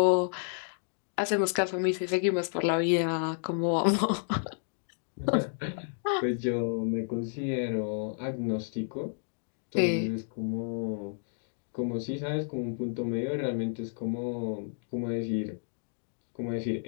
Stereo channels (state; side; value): silent; right; digital silence